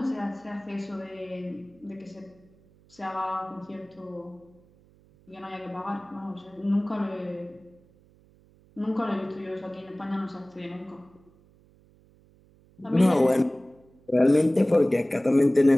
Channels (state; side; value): noise; right; hum, 29 dB below the sound